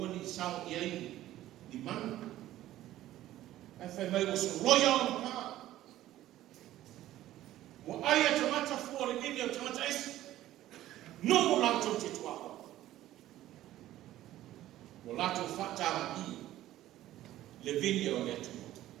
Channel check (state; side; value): quieter; left; 14.2 dB